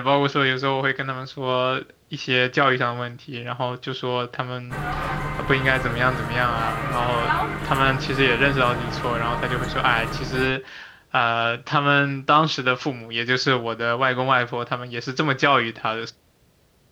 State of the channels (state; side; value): identical; both; correlation 1.00